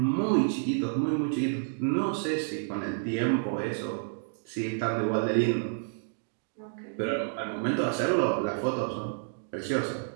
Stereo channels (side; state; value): left; silent; digital silence